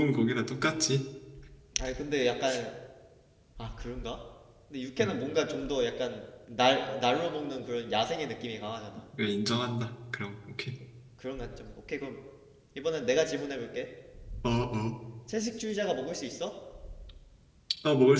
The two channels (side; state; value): both; identical; correlation 1.00